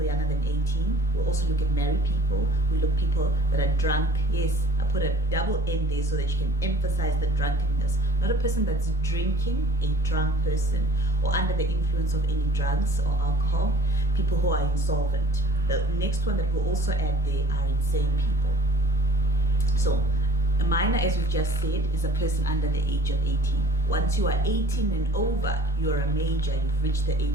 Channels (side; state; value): both; normal; correlation 0.48